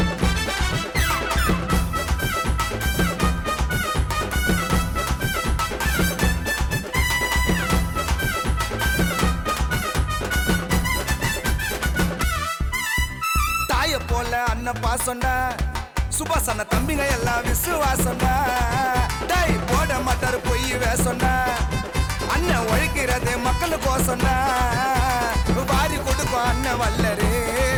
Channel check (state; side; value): identical; both; correlation 1.00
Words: போல அண்ணன் பாசம்டா, சுபாஷ் அண்ணன் தம்பிங்க எல்லாம் விசுவாசம்டா. டை போட மாட்டாரு பொய் வேசம்டா, அண்ணன் உழைக்கிறது மக்களுக்கோசம்டா. வாரி கொடுக்கும் அண்ணன் வல்லரு,